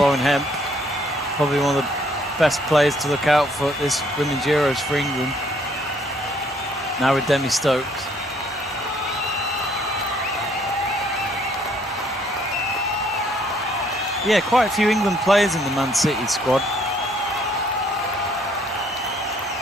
Hemp, probably one of the best players to look out for at this Women's Euros for England. Now with Demi Stokes. Yeah, quite a few England players in the Man City squad.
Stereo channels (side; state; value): both; normal; correlation 0.64